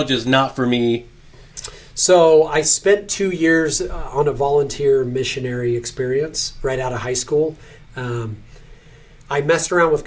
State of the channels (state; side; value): identical; both; correlation 1.00